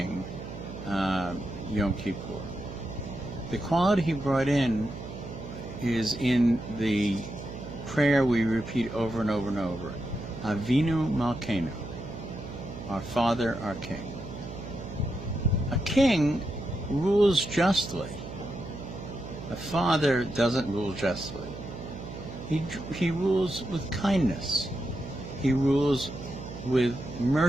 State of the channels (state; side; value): noise; right; hum, 10 dB below the sound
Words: Yom Kippur? The quality he brought in is in the prayer we repeat over and over and over. Avinu Malkeinu, our Father, our King. A king rules justly. A father doesn't rule justly. He rules with kindness. He rules with